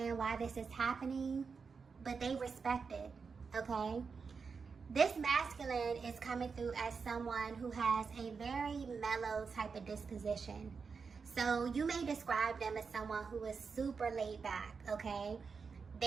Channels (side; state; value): left; quieter; 5.3 dB